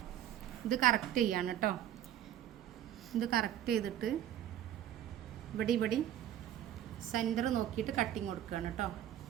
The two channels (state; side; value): quieter; left; 11.3 dB